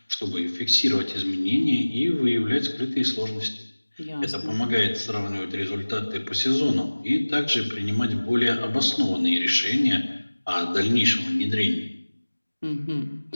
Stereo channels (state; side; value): inverted; both; correlation -1.00